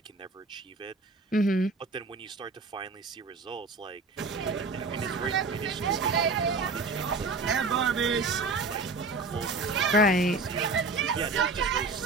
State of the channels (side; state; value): left; quieter; 3.6 dB